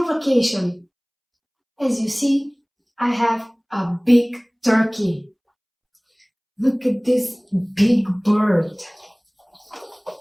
vacation? As you see, I have a big turkey. Look at this big bird.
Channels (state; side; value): identical; both; correlation 1.00